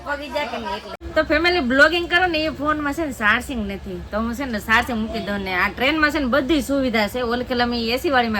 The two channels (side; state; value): both; identical; correlation 1.00